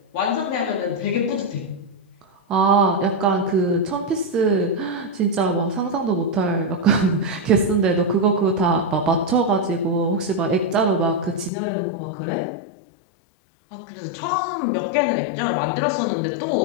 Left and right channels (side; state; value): right; drops out; at 11.5 s